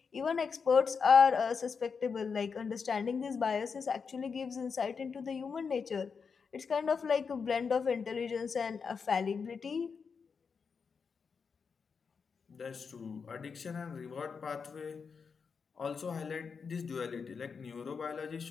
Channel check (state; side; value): quieter; right; 5.7 dB